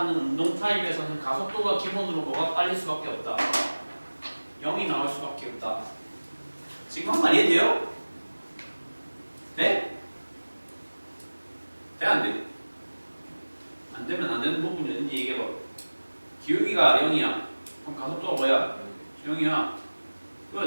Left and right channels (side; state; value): both; inverted; correlation -1.00